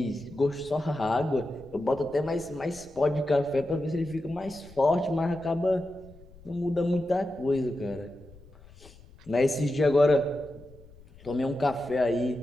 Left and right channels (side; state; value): left; noise; rumble, 23 dB below the sound